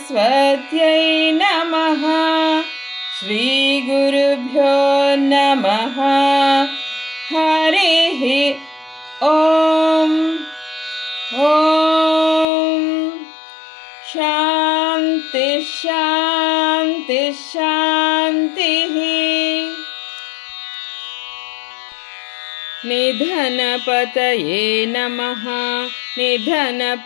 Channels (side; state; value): right; drops out; at 12.5 s